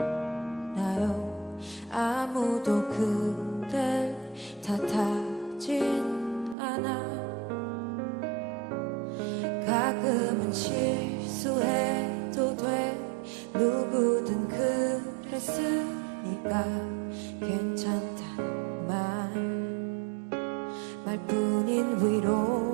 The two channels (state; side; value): drops out; left; at 6.6 s